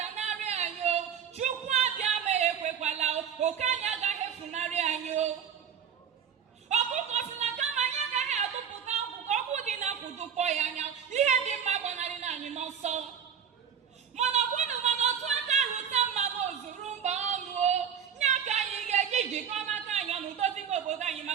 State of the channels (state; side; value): quieter; left; 7.9 dB